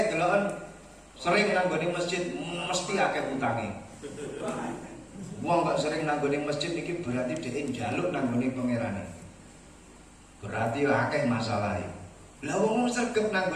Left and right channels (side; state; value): both; identical; correlation 1.00